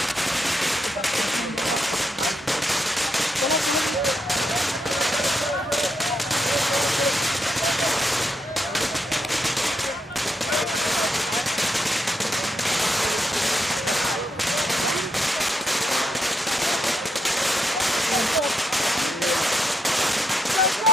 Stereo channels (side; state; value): both; normal; correlation 0.80